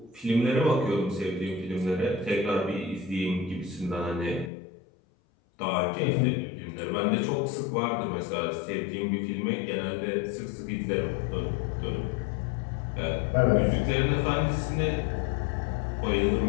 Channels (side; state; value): right; drops out; at 4.5 s